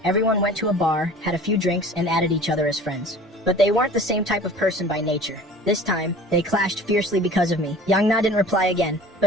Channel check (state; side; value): normal; both; correlation 0.44